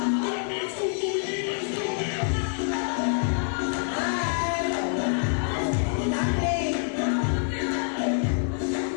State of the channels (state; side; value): silent; right; digital silence